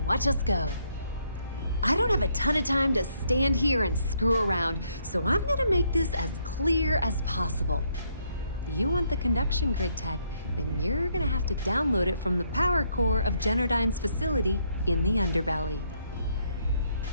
watch us go. I don't have a ton of time to stand here and screw around, so I'm gonna make this as clear as possible. You want the conduction grid tech, then you're gonna have to download it from the power core of Generdyne's facility in the underbelly.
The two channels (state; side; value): inverted; both; correlation -0.72